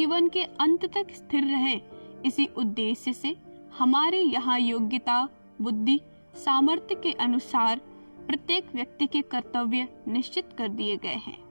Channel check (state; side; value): inverted; both; correlation -1.00